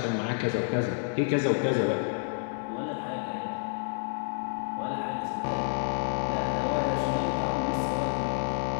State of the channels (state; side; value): silent; right; 58 dB below the other